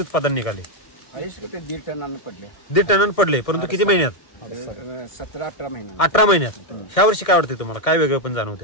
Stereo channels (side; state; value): right; late; 1.7 ms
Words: उत्पादन निघाले? हायेस्ट 1.5 टनानं पडले. 1.5 टनानं पडले. परंतु किती महिन्यात? 17-18 महिन्यात. 18 महिन्यात. ह्या वर्षी काय वाटते तुम्हाला? काय वेगळं पण